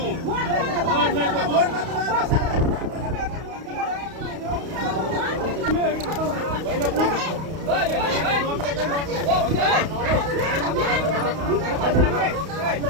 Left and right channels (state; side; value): late; left; 32 ms